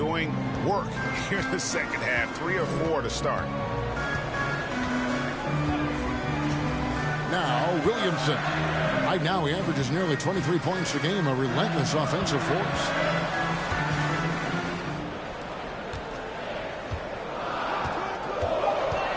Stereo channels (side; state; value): both; identical; correlation 1.00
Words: work here in the second half. 3 or 4 to start. Now, Williamson. Right now, he averages nearly 23 points a game, a relentless offensive force.